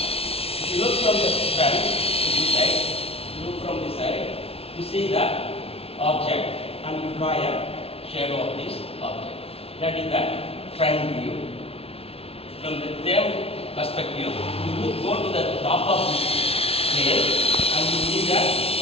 If you look from the front to this side, you look from this side, you see the object, and you draw a shadow of this object. That is the front view. From the same perspective, you go to the top of this plane, and you see the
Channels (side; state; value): right; late; 0.28 ms